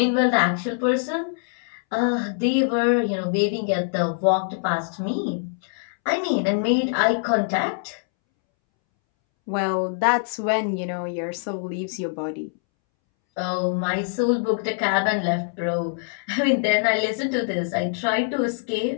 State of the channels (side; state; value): right; silent; 63 dB below the other